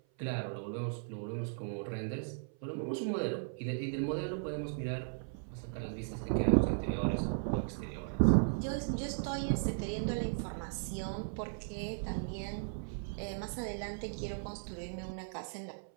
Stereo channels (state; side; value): silent; left; 53 dB below the other